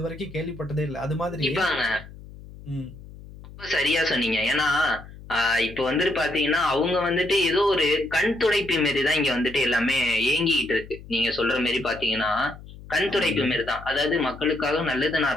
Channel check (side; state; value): left; noise; hum, 17 dB below the sound